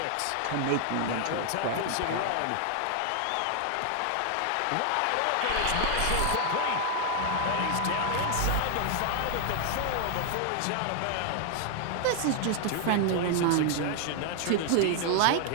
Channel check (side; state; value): both; different; correlation 0.00